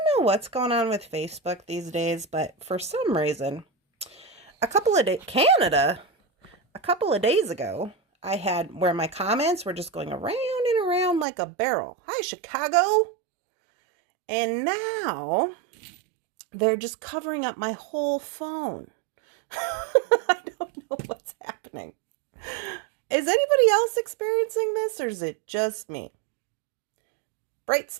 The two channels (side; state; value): left; drops out; at 11.2 s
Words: what's going on with Facebook these days, but for some reason, Canada, a couple of days ago, I had where my comments were just going around and around like a barrel. Hi, Chicago. And now they're just covering up my whole phone. I don't know what's happening. Is anybody else experiencing this, or is it just me? Bright